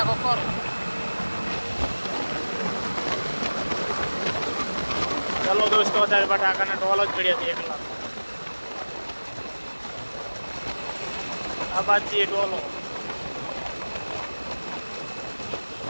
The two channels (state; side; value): inverted; both; correlation -1.00